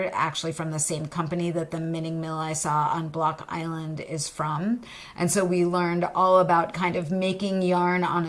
actually from the same company that the knitting mill I saw on Block Island is from. And so we learned all about kind of making yarn on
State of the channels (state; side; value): identical; both; correlation 1.00